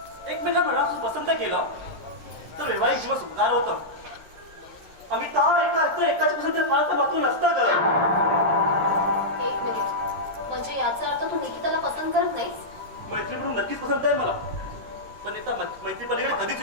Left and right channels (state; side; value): late; left; 13 ms